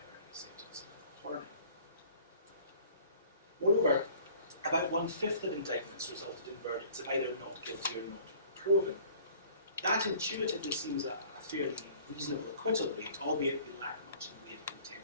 a sentence of torning. Moreover, about 1/5 of indictments resulted in verdicts of either not guilty or not proven. That intuitively seems a fairly reasonable acquittal rate, albeit we lack much in the way of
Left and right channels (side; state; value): both; inverted; correlation -0.51